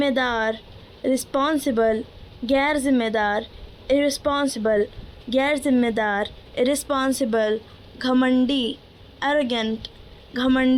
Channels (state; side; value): identical; both; correlation 1.00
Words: रिस्पॉन्सिबल, गैर जिम्मेदार इरिस्पॉन्सिबल, गैर जिम्मेदार इरिस्पॉन्सिबल, घमंडी एरोगेंट,